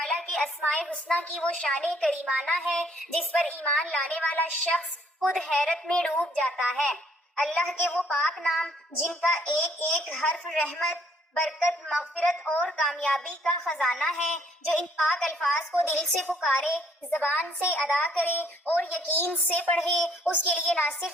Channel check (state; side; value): normal; both; correlation 0.64